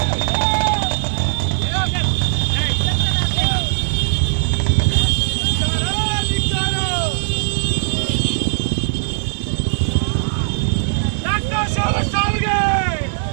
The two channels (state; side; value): silent; left; 67 dB below the other